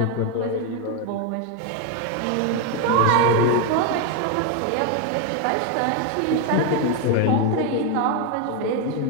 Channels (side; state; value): both; different; correlation 0.02